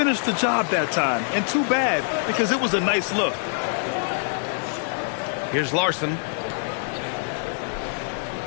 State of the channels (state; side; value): silent; right; 62 dB below the other